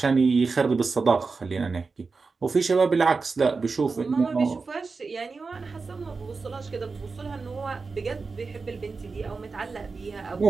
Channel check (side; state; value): left; quieter; 4.4 dB